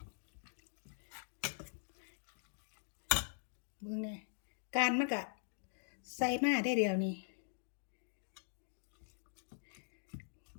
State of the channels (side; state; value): right; silent; digital silence